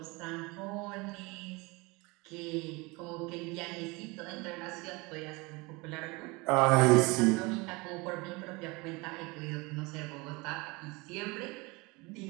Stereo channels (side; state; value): left; quieter; 25.4 dB